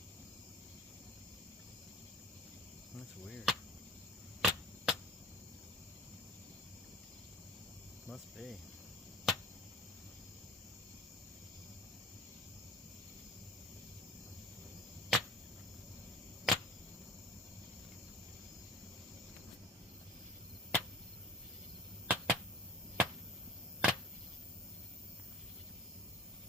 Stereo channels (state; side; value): normal; both; correlation 0.44